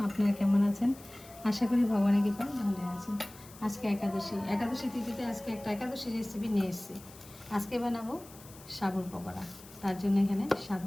আপনারা কেমন আছেন? আশা করি ভগবানের কৃপায় ভালো আছেন। আজকে একাদশী তিথিতে আজকে একটা একাদশী রেসিপি নিয়ে এসেছি। আজকে বানাবো সাবুর পকোড়া। তার জন্য এখানে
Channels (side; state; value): left; noise; hiss, 20 dB below the sound